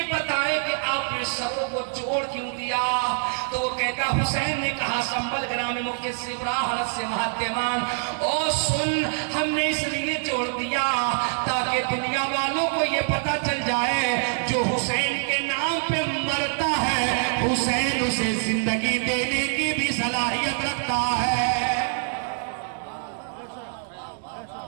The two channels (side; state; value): left; silent; 62 dB below the other